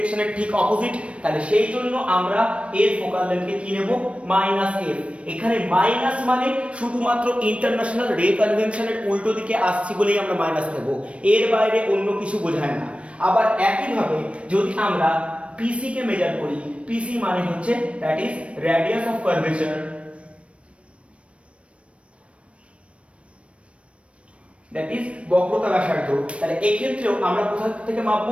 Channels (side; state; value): left; late; 0.061 ms